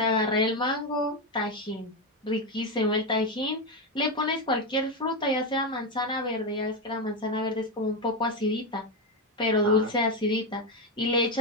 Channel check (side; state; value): both; normal; correlation 0.10